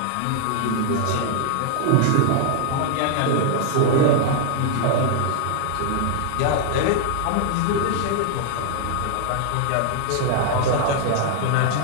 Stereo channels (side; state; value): both; different; correlation 0.00